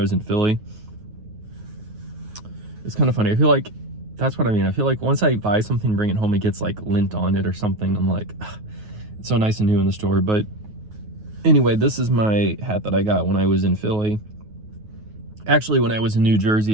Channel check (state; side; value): late; left; 9.4 ms